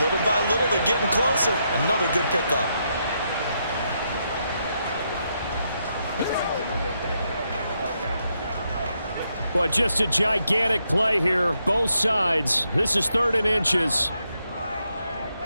Little by little, they're getting closer. Another good pickup. Well, just a gigantic play here, both sides. This is 3rd and inches.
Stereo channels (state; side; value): inverted; both; correlation -0.80